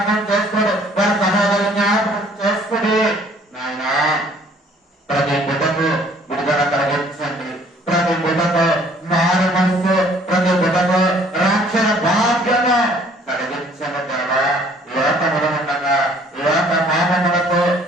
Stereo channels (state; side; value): normal; both; correlation 0.58